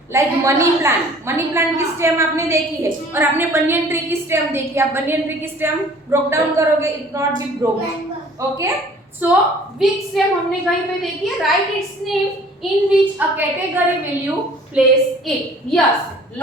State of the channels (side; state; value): both; normal; correlation 0.51